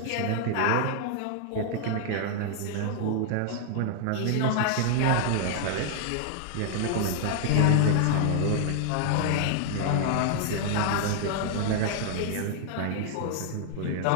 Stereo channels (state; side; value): different; both; correlation 0.00